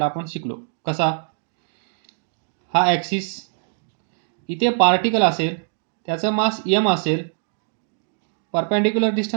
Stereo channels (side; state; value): left; silent; digital silence